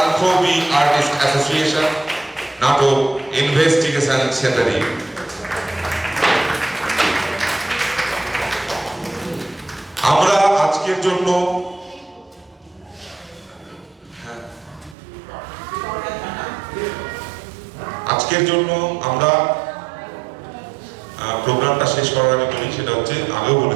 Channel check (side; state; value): left; drops out; at 15.0 s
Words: আর্টিস্ট অ্যাসোসিয়েশন, নাটক ইনভেস্টিগেশন সেটারি। আমরা আজকের জন্য আমরা প্রোগ্রামটা শেষ করার আগে বলি, সেটা হচ্ছে আগেও